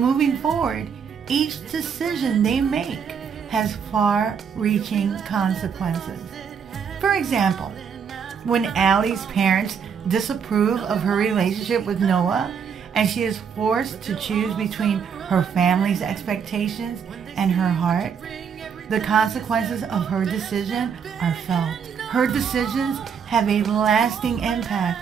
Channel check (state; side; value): quieter; left; 6.9 dB